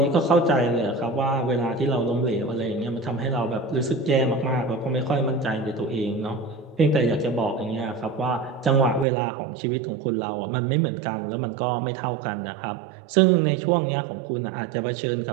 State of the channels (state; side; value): drops out; left; at 9.1 s